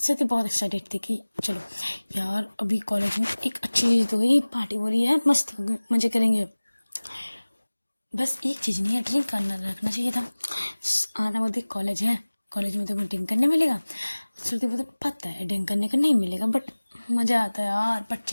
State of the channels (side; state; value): both; inverted; correlation -1.00